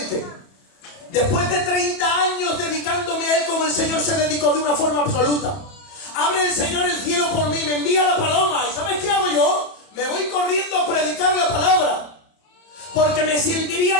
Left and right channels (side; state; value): right; late; 31 ms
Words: después de 30 años dedicándome a Él como el Señor se dedicó de una forma absoluta, abre el Señor el cielo por mí, me envía la paloma, ¿y sabes qué hago yo? Me voy corriendo a predicar la palabra, porque me sentiría